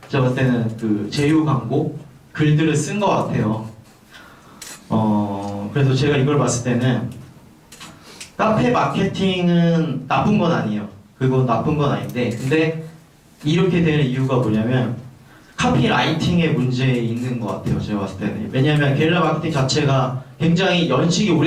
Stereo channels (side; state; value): both; identical; correlation 1.00